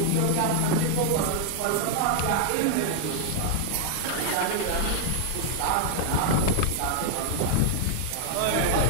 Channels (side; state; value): both; different; correlation -0.01